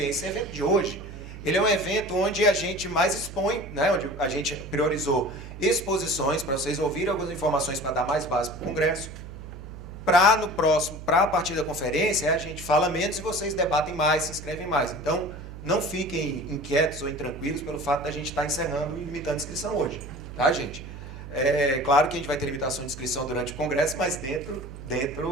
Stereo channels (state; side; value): noise; right; hum, 12 dB below the sound